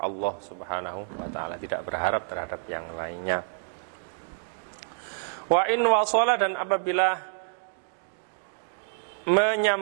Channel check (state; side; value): silent; left; digital silence